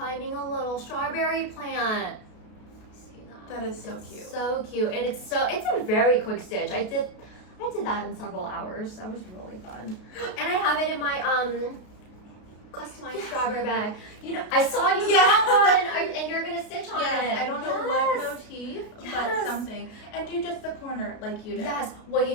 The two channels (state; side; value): late; right; 33 ms